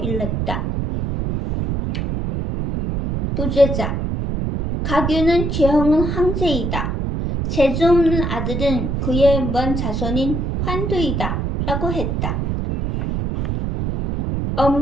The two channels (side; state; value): right; noise; rumble, 1 dB below the sound